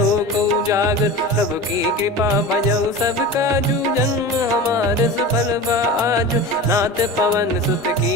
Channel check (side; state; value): both; normal; correlation 0.31